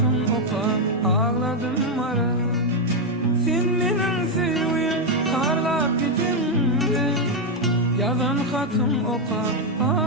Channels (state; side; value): normal; both; correlation 0.03